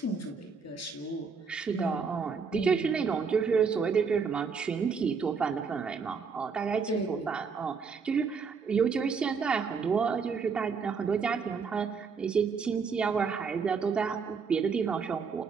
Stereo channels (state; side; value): quieter; left; 5.5 dB